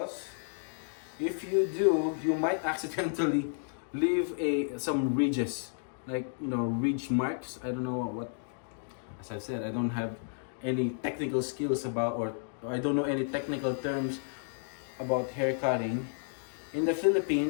if you do, you might accidentally leave some ridges, like, you know, ridge marks. I don't know what, as I've said, I don't have any technical skills about, or I don't know any technical terms about hair cutting. In the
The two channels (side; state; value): right; silent; digital silence